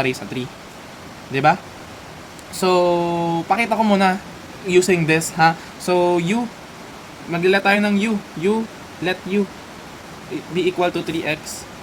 sa 3. Diba? So, pakita ko muna using this, ha? So, u, maglila tayo ng u. Let u be equal to 3x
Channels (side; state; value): both; identical; correlation 1.00